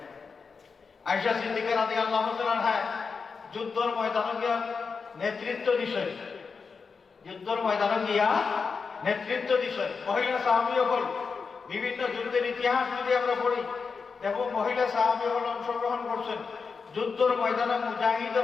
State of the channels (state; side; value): quieter; right; 5.2 dB